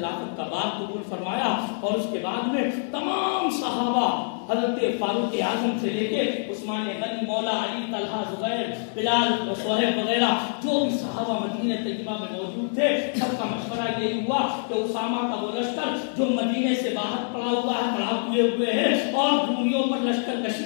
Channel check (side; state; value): right; silent; digital silence